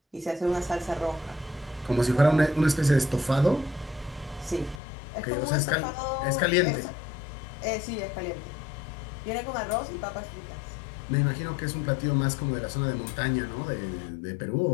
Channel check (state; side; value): drops out; right; at 4.8 s